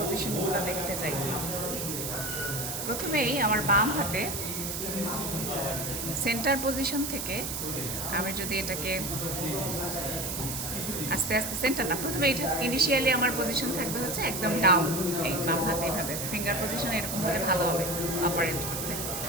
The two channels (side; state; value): right; noise; hiss, 4 dB below the sound